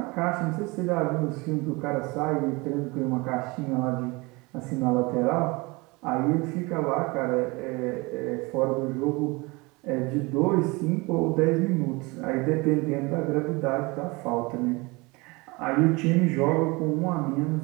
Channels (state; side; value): quieter; left; 25.3 dB